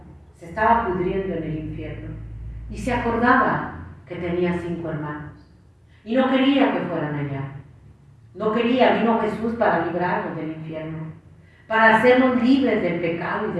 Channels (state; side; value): identical; both; correlation 1.00